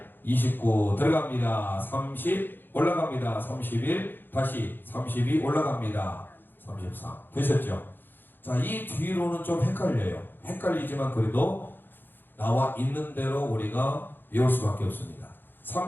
29 들어갑니다. 30 올라갑니다. 31 다시 32 올라갑니다. 33 되셨죠? 자, 이 뒤로는 좀 헷갈려요. 헷갈리지만 그래도 나와 있는 대로 우리가 외울 수밖에 없습니다.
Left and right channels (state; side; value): late; right; 0.095 ms